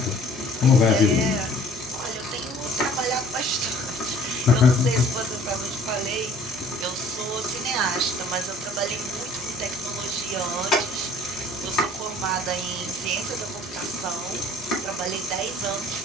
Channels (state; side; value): normal; both; correlation 0.53